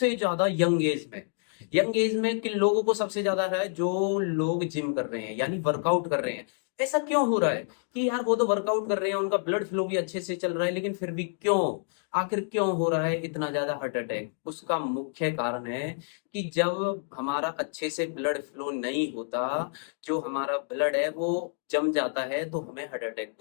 ज्यादा यंग एज में किन लोगों को सबसे ज्यादा है? जो लोग जिम कर रहे हैं यानी वर्कआउट कर रहे हैं। ऐसा क्यों हो रहा है कि यार वो तो वर्कआउट कर रहे हैं, उनका ब्लड फ्लो भी अच्छे से चल रहा है, लेकिन फिर भी क्यों, आखिर क्यों हो रहा है इतना ज्यादा हार्ट अटैक? उसका मुख्य कारण है कि जब हमारा अच्छे से ब्लड फ्लो नहीं होता, जो हमारा ब्लड है वो जम जाता है, तो हमें हार्ट अटैक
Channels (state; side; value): silent; right; digital silence